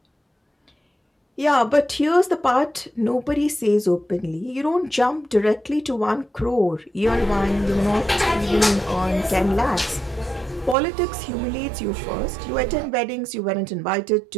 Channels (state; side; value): drops out; left; at 10.8 s